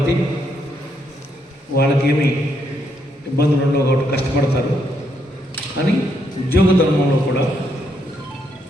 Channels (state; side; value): normal; both; correlation 0.76